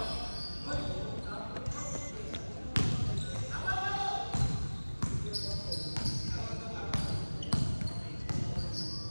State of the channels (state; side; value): inverted; both; correlation -1.00